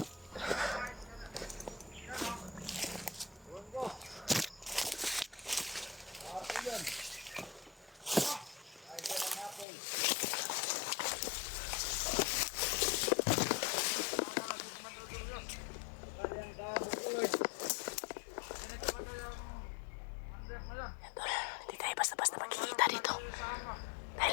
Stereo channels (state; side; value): drops out; right; at 9.7 s